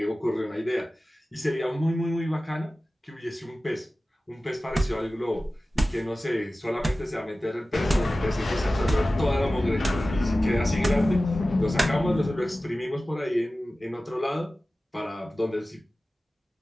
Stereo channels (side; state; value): both; normal; correlation 0.96